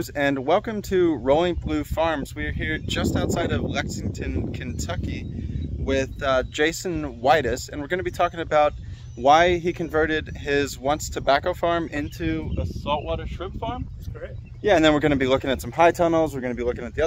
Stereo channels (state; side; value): identical; both; correlation 1.00